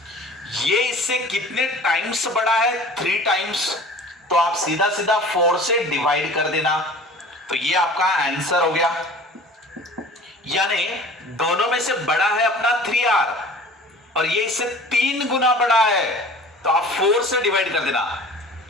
ये इससे कितने टाइम्स बड़ा है 3 टाइम्स, तो आप सीधा सीधा 4 से डिवाइड कर देना, तो ये आपका आंसर हो गया। यानी दोनों में से बड़ा है अपना 3R और ये इससे 3 गुना बड़ा है, तो आप 4 से डिवाइड कर देना,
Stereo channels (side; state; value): both; normal; correlation 0.43